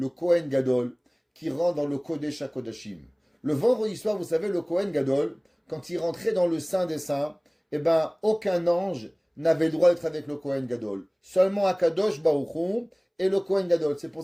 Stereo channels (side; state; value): both; identical; correlation 1.00